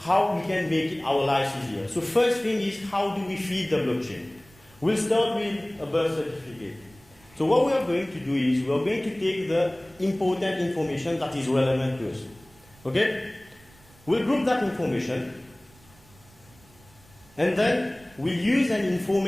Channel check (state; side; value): noise; right; rumble, 27 dB below the sound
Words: we can make our lives easier. So first thing is, how do we feed the blockchain? We'll start with a birth certificate. So what we are going to do is, we are going to take the important information that is relevant to us. Okay? We'll group that information, and then we'll use an